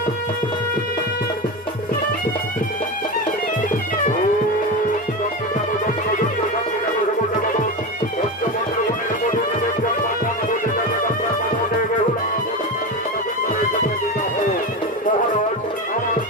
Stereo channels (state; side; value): normal; both; correlation 0.20